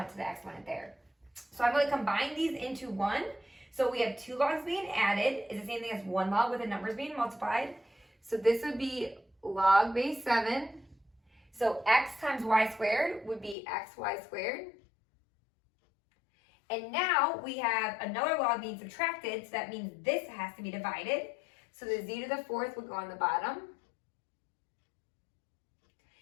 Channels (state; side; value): drops out; right; at 13.6 s